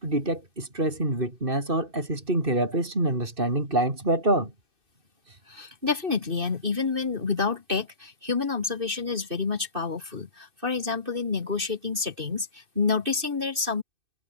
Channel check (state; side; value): late; left; 2.6 ms